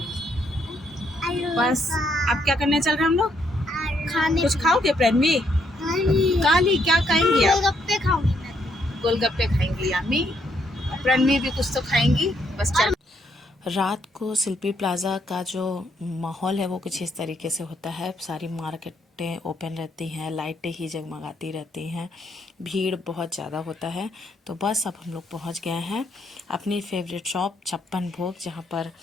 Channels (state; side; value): normal; both; correlation 0.73